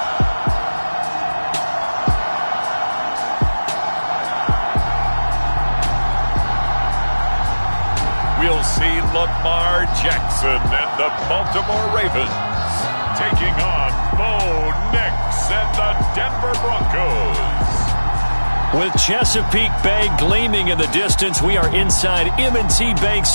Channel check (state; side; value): inverted; both; correlation -1.00